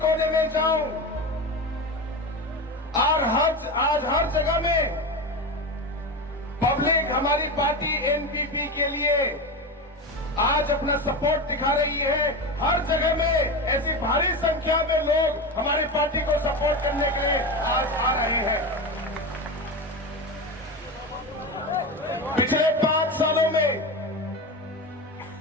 कोने में जाऊं, और आज हर जगह में पब्लिक हमारी पार्टी एनपीपी के लिए आज अपना सपोर्ट दिखा रही है। हर जगह में ऐसी भारी संख्या में लोग हमारी पार्टी को सपोर्ट करने के लिए आज आ रहे हैं। पिछले 5 सालों में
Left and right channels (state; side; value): normal; both; correlation 0.21